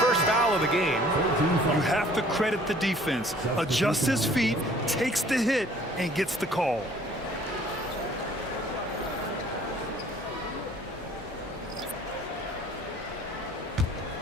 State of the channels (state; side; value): normal; both; correlation 0.55